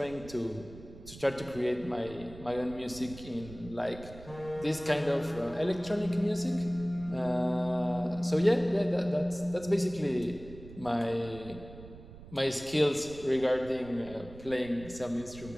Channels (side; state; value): right; noise; rumble, 16 dB below the sound